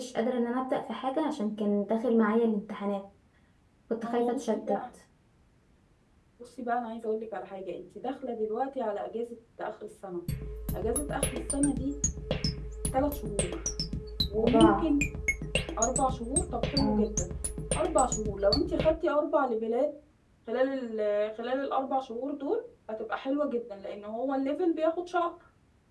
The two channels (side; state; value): both; identical; correlation 1.00